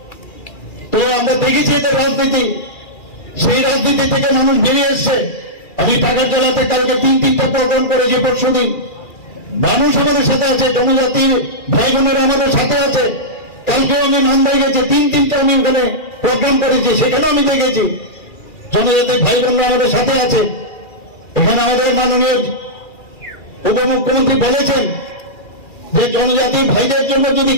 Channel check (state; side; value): late; right; 2.4 ms